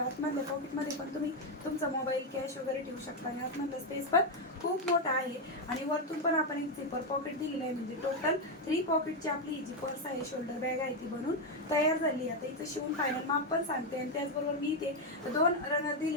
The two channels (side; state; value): both; normal; correlation 0.04